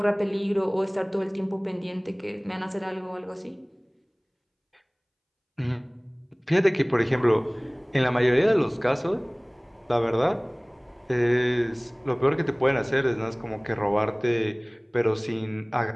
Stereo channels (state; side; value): identical; both; correlation 1.00